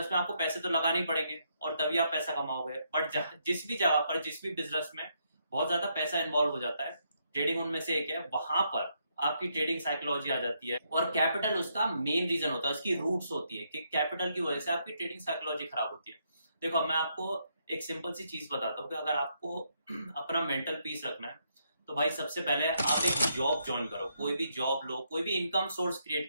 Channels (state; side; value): inverted; both; correlation -0.77